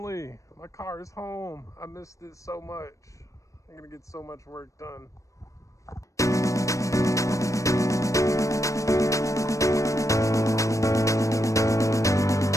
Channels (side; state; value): right; late; 0.15 ms